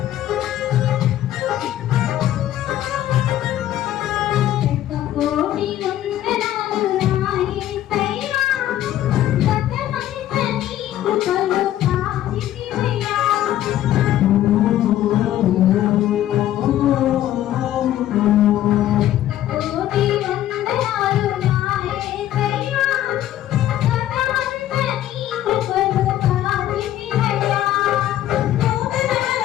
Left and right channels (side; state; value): right; quieter; 12.9 dB